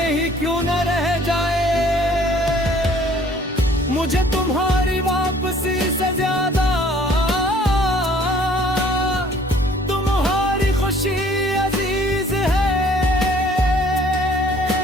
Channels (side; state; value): both; normal; correlation 0.56